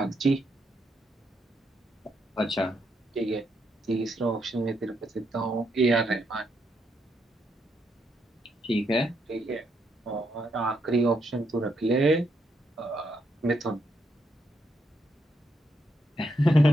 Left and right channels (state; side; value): normal; both; correlation 0.78